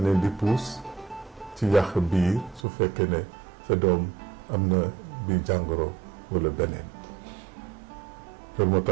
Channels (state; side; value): drops out; left; at 2.7 s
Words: leen di puus ci yàq biir su fekkee ne sa doom am na bi jàngoro walla beneen. loolu moo